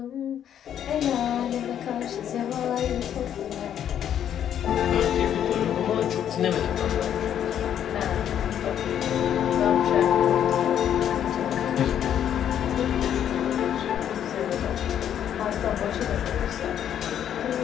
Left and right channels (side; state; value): right; quieter; 9.8 dB